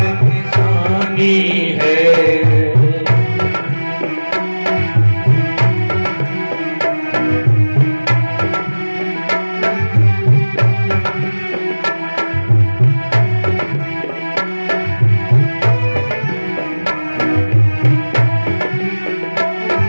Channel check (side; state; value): both; inverted; correlation -1.00